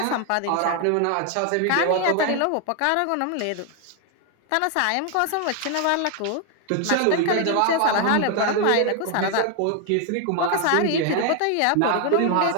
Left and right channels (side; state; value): both; different; correlation 0.00